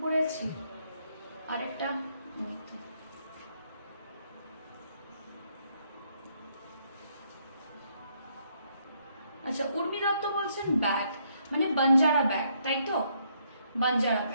পরে আছি আর একটা, আচ্ছা উর্মি দত্ত বলছেন ব্যাগ মানে বাঞ্জারা ব্যাগ, তাই তো? বাঞ্জারা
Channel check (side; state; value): both; inverted; correlation -0.72